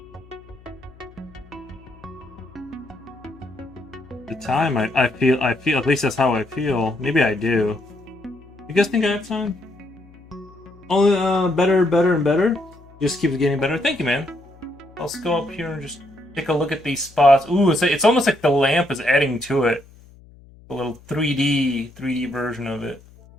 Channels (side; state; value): left; noise; hum, 24 dB below the sound